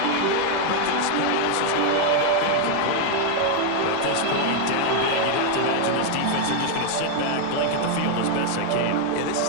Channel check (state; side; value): different; both; correlation 0.00